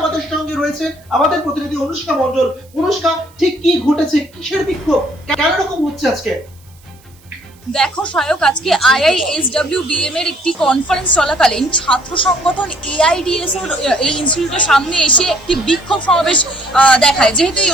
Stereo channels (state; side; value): noise; right; hiss, 29 dB below the sound